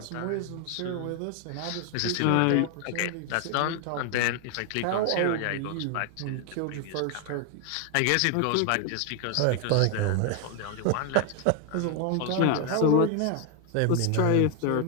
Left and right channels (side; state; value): both; different; correlation 0.00